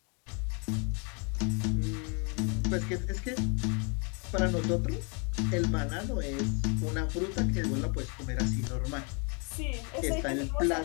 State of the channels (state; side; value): quieter; right; 35.1 dB